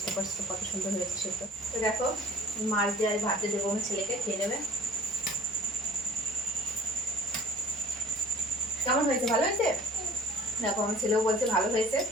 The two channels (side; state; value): both; normal; correlation 0.47